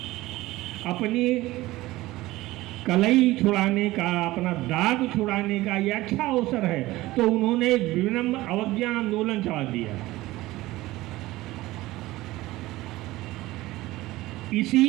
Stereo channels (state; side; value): quieter; left; 18.0 dB